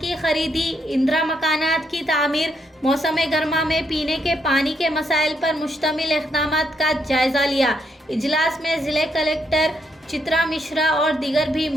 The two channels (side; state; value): both; normal; correlation 0.76